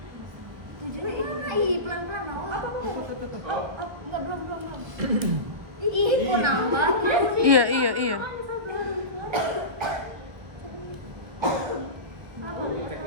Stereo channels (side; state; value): left; late; 1.4 ms